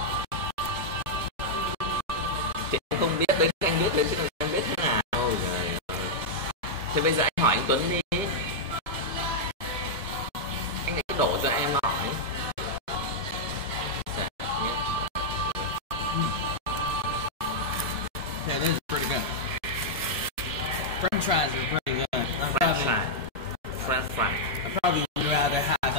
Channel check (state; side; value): normal; both; correlation -0.05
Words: Chị không biết đến anh biết đến chứ anh biết thế nào. Thì bây giờ anh hỏi anh Tuấn đi. Okay, this is pretty good. French fries are pretty good. French fry. I'd probably rather have